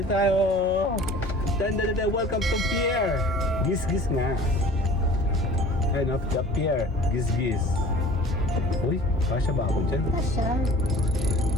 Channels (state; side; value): normal; both; correlation 0.45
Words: tayo. Welcome to pier. Gis-gis nga. Ayan o, the pier. Gis-gis. Uy, kasya ba ako dyan? Kasya.